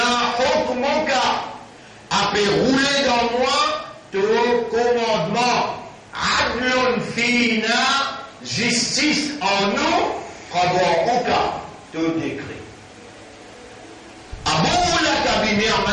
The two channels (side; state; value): both; identical; correlation 1.00